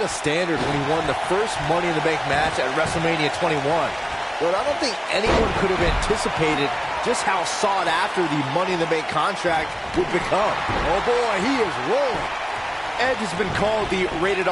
a standard when he won the first Money in the Bank match at WrestleMania 21. But I don't think anyone could have anticipated just how sought after the Money in the Bank contract would become. Oh boy, he is rolling. Edge has been called the Rated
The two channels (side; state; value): both; identical; correlation 1.00